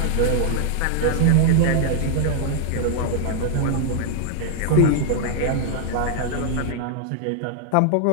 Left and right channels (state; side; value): different; both; correlation 0.00